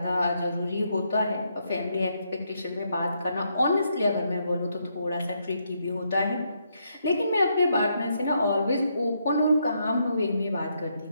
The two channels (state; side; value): inverted; both; correlation -0.77